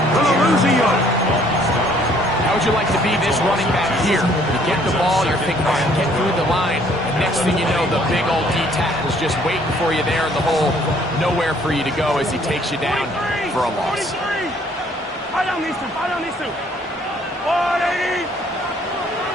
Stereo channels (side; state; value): both; normal; correlation 0.61